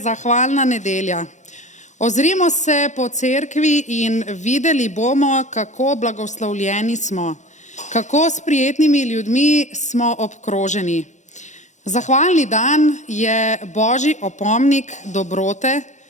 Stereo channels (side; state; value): right; late; 0.35 ms